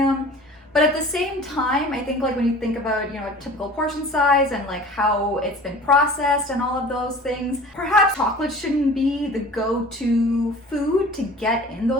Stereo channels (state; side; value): normal; both; correlation 0.43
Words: But at the same time, I think like when you think about, a typical portion size and like how it's been processed and all of those things, perhaps chocolate shouldn't be the go-to food to get in